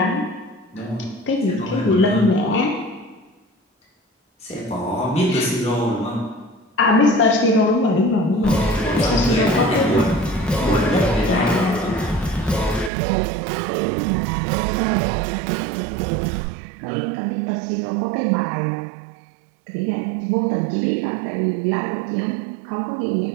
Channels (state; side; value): drops out; left; at 12.9 s